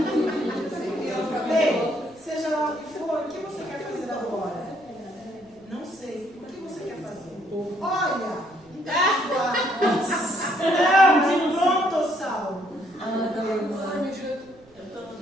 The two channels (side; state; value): right; noise; rumble, 30 dB below the sound